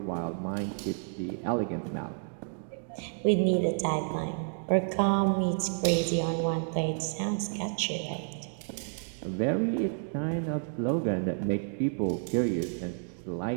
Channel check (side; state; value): left; silent; 58 dB below the other